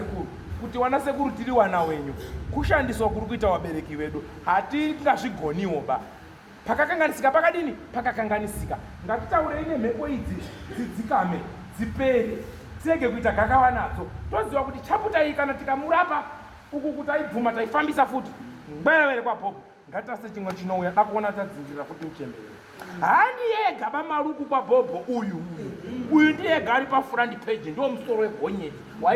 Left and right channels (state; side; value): identical; both; correlation 1.00